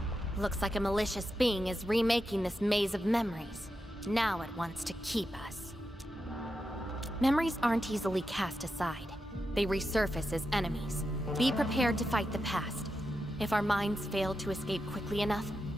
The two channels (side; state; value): both; normal; correlation 0.88